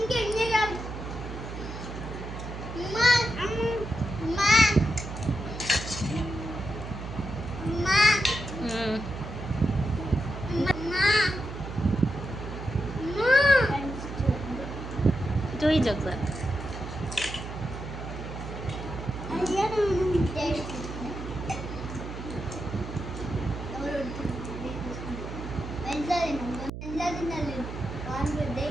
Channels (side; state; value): right; noise; hum, 8 dB below the sound